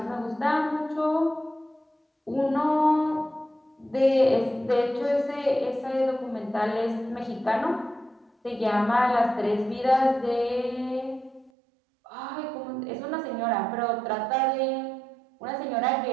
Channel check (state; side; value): drops out; left; at 11.5 s